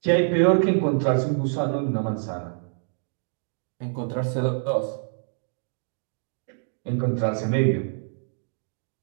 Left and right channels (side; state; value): left; silent; digital silence